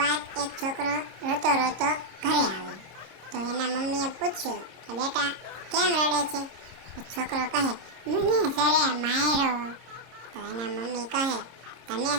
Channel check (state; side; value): late; left; 26 ms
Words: એક છોકરો રોતો રોતો ઘરે આવ્યો. તો એના મમ્મીએ પૂછ્યું કે બેટા કેમ રડે છે? તો છોકરો કહે, મને સરે માર્યો. તો એના મમ્મી કહે, તને